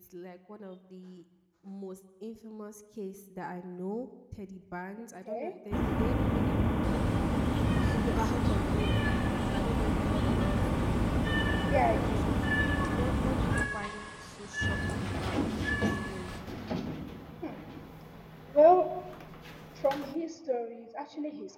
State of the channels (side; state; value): both; identical; correlation 1.00